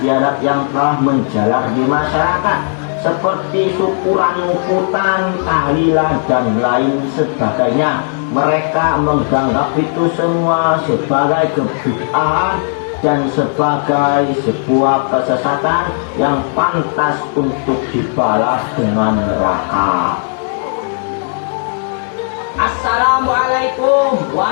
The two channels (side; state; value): right; silent; digital silence